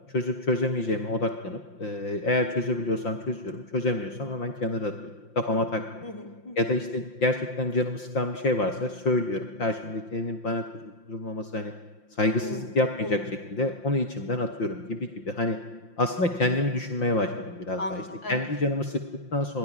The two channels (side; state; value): right; late; 5.8 ms